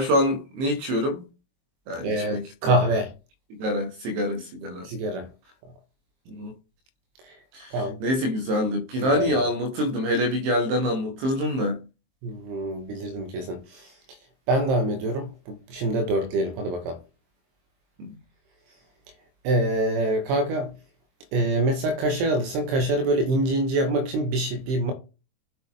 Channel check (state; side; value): late; left; 23 ms